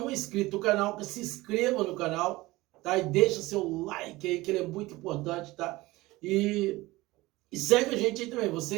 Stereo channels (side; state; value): left; quieter; 19.7 dB